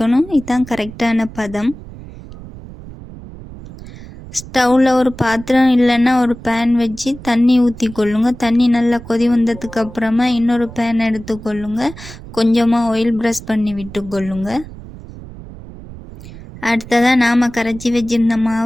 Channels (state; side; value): noise; right; rumble, 15 dB below the sound